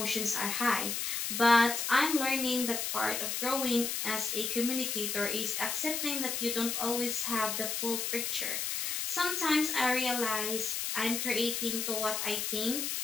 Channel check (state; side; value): noise; left; hiss, 1 dB below the sound